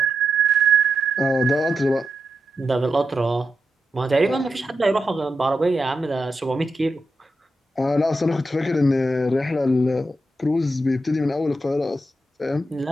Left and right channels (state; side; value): normal; both; correlation 0.86